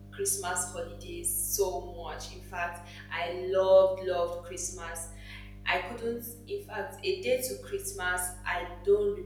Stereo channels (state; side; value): identical; both; correlation 1.00